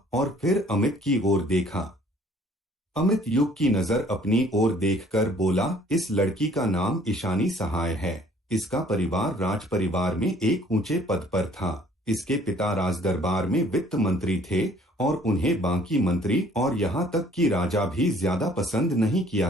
और फिर अमित की ओर देखा। अमित युग की नजर अपनी ओर देखकर बोला, इस लड़की का नाम ईशानी सहाय है। इसका परिवार राज परिवार में एक ऊंचे पद पर था। इसके पिता राजदरबार में वित्त मंत्री थे और उन्हें बाकी मंत्री और यहाँ तक कि राजा भी ज्यादा पसंद नहीं किया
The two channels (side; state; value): both; normal; correlation 0.57